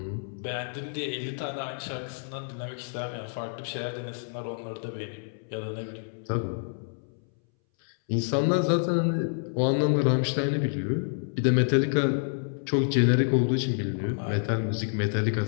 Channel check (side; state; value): right; silent; 59 dB below the other